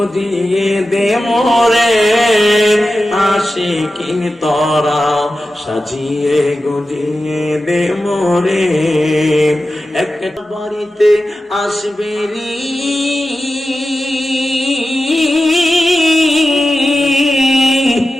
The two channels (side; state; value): both; normal; correlation 0.93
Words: দে মোরে আসে কিনি তোরা সাজিয়ে গুজিয়ে দে মোরে একটা বাড়িতে আসবে রি